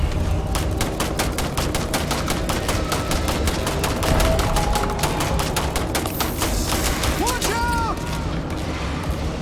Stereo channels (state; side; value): identical; both; correlation 1.00